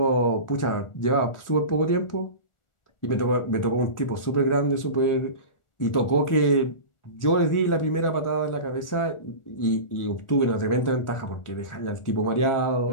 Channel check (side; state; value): right; late; 1.4 ms